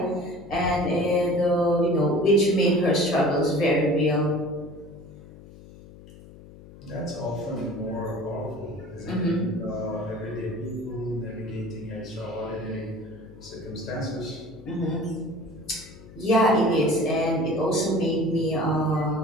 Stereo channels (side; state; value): left; noise; hum, 19 dB below the sound